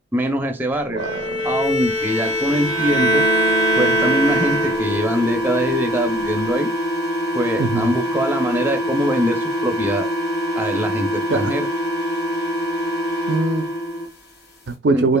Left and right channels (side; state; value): both; normal; correlation 0.57